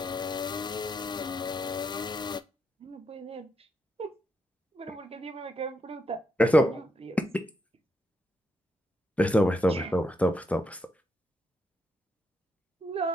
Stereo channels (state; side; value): normal; both; correlation 0.80